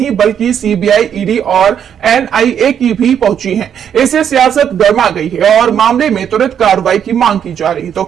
बल्कि सीबीआई, ईडी और एनआईए की भी पहुंची है। इससे सियासत गर्मा गई है और मामले में तुरंत कार्रवाई की मांग की जा रही है। तो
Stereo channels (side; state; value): left; quieter; 8.6 dB